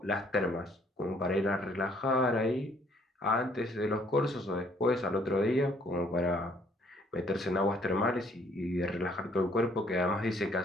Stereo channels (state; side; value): normal; both; correlation 0.64